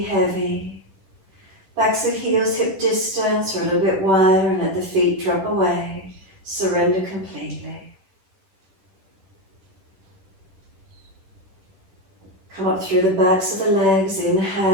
heavy. Backs of heels hip distance or a little bit wider and let the feet drop away. Surrender completely. Come up through the backs of the legs,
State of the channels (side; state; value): left; late; 10 ms